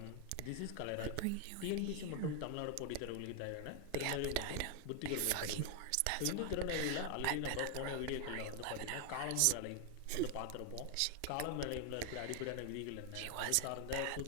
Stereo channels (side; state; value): both; different; correlation 0.00